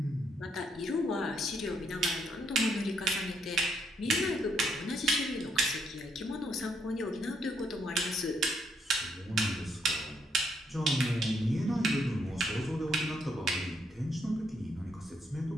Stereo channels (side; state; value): both; normal; correlation 0.74